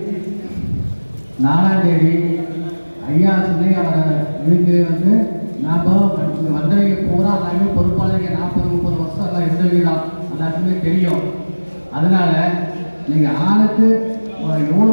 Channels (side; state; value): both; inverted; correlation -1.00